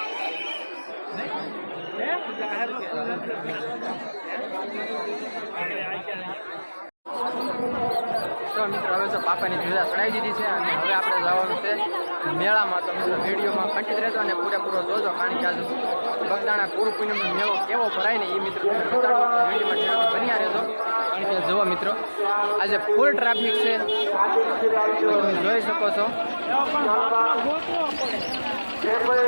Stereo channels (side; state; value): both; inverted; correlation -1.00